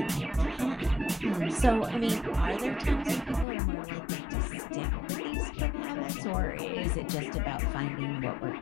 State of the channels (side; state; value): right; drops out; at 3.5 s